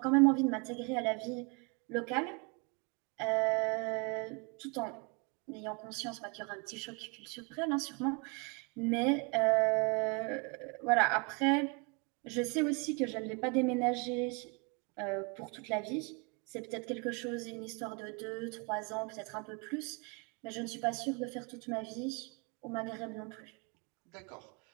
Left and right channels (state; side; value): quieter; left; 32.5 dB